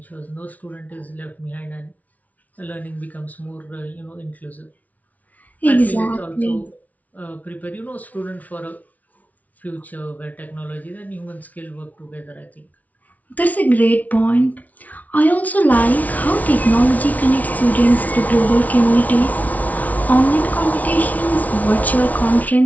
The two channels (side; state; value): right; late; 0.072 ms